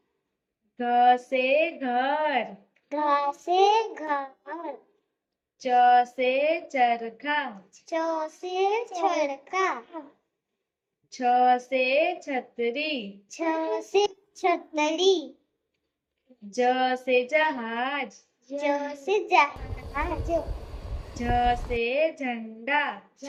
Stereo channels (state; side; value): identical; both; correlation 1.00